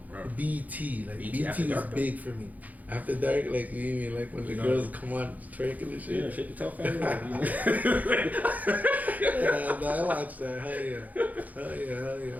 Right. BET. Like BET was dark, big for me. After dark, like you mean like when the girls come on twerking and shit. Yeah, shit the top. Yeah, no, I watched that. Hell yeah.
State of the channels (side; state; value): left; late; 0.079 ms